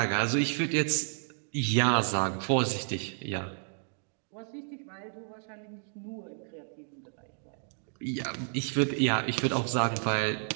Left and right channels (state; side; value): silent; left; digital silence